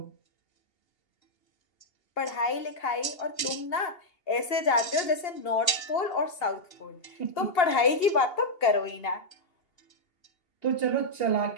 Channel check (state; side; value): late; right; 2.8 ms